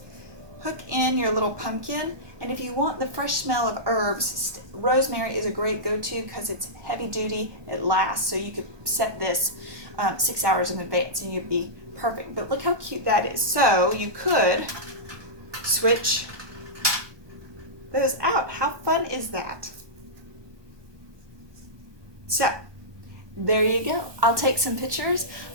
Hook in your little pumpkin, and if you want the fresh smell of herbs, rosemary is a great go-to because it's heavy duty, it lasts, so you could set this 6 hours in advance and you'd be perfect. But look how cute that is. So you could switch those out. How fun is that? So there you go. I'll take some pictures.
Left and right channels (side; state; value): left; late; 1.2 ms